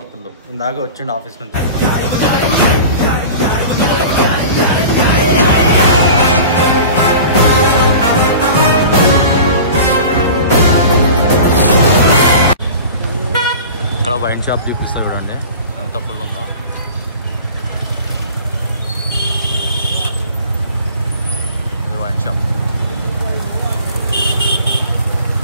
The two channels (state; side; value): inverted; both; correlation -0.38